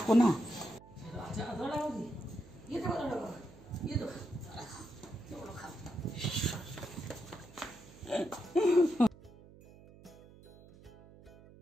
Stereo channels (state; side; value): noise; right; hum, 21 dB below the sound